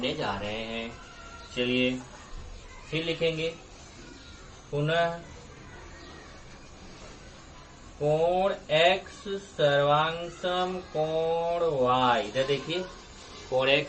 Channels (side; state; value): both; identical; correlation 1.00